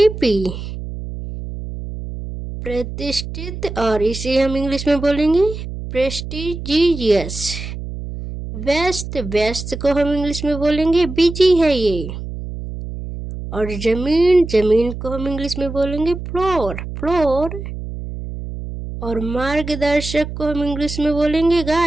प्रतिष्ठित और इसे हम इंग्लिश में बोलेंगे प्रेस्टिजियस। व्यस्त व्यस्त को हम इंग्लिश में बोलेंगे बिजी है ये। और जमीन जमीन को हम इंग्लिश में बोलेंगे फ्लोर फ्लोर। और मार्गदर्शक को हम इंग्लिश में बोलेंगे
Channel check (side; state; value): right; noise; hum, 8 dB below the sound